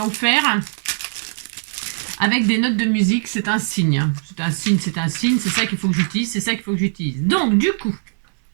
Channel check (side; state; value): left; silent; digital silence